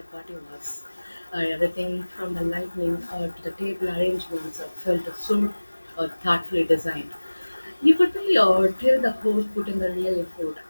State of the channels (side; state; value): both; inverted; correlation -1.00